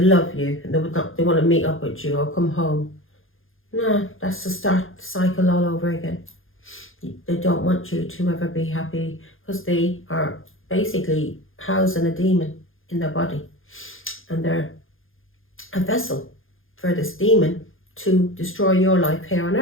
love you, and they want to meet up with you or come home. No, that's to start the cycle all over again. They don't want you to ever be happy, because they are basically housing a demon in their body, and they're a vessel for this demon to destroy your life here on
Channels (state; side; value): late; right; 0.59 ms